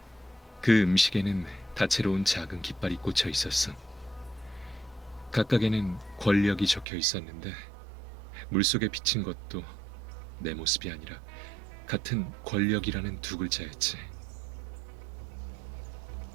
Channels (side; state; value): left; drops out; at 6.9 s